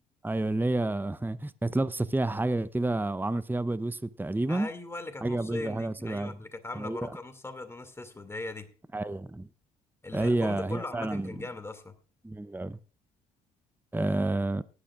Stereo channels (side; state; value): both; normal; correlation 0.94